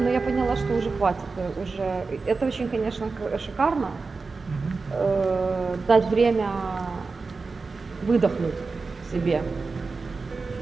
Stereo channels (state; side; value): quieter; left; 4.2 dB